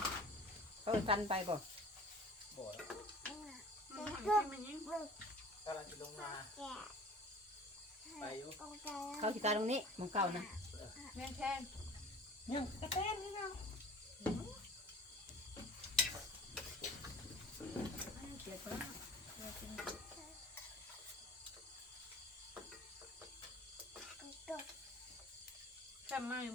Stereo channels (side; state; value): both; normal; correlation 0.43